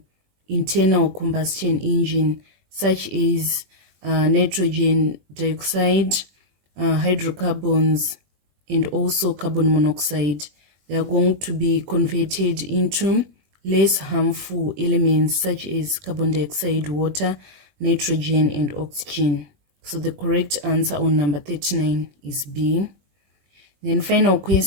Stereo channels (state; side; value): late; left; 21 ms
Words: internal combustion engine, such as nitrogen dioxide, hydrocarbons, and also carbon monoxide. They are going to be converted into less harmful elements such as carbon dioxide, water, nitrogen, and oxygen. So the correct answer on number 39 is B. Then final